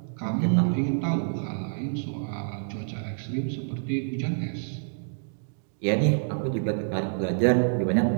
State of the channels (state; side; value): silent; left; digital silence